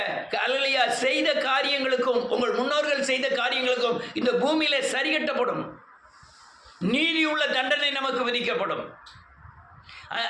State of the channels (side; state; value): both; identical; correlation 1.00